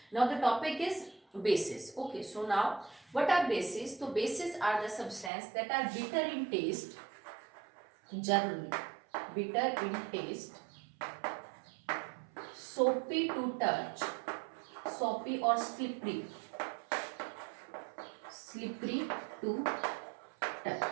Now the topic is bases. Okay, so now what are bases? तो bases are the substance that are bitter in taste, generally bitter in taste, soapy to touch, soapy or slippery, slippery to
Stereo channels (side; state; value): left; drops out; at 5.3 s